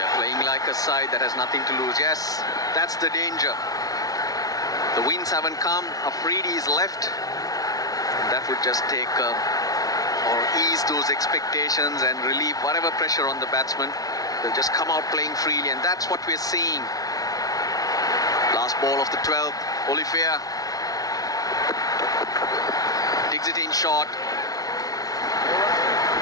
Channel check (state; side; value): late; right; 0.18 ms